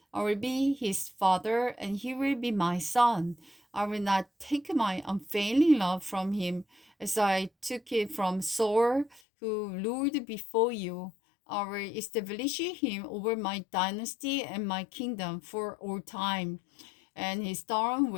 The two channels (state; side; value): drops out; right; at 9.2 s